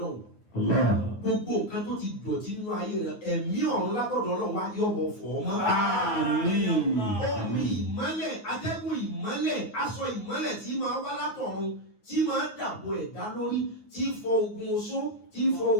gbogbo nǹkan tó ti dọ̀tí nínú ayé rẹ ẹ̀mí ọ̀run lágbọ̀dọ̀ Ọlọ́run wá yọ̀bọ̀ fọ̀ ọ́ mọ́. omi ìmọ́lẹ̀ atẹ́gùn ìmọ́lẹ̀ aṣọ ìmọ́lẹ̀ tí máa wá látọ̀run tí máa dàbò ẹ̀dá lórí tí fọ ogun oṣó tí fọ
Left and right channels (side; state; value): right; late; 9.5 ms